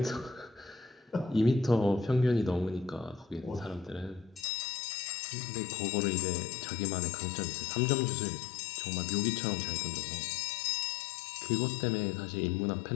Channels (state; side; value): drops out; right; at 4.5 s